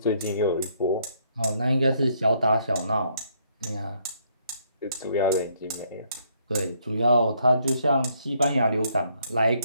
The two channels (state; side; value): inverted; both; correlation -0.70